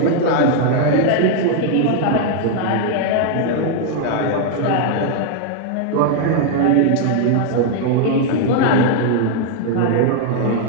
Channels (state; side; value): different; both; correlation 0.00